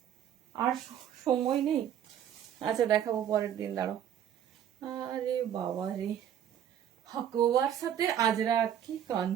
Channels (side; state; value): left; quieter; 9.9 dB